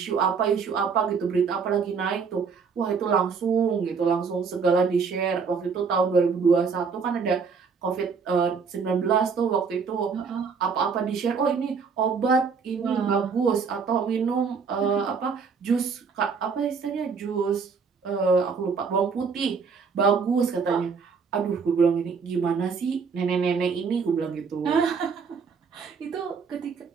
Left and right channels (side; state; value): left; quieter; 5.6 dB